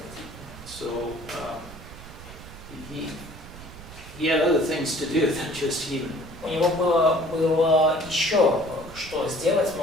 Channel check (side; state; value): right; noise; rumble, 16 dB below the sound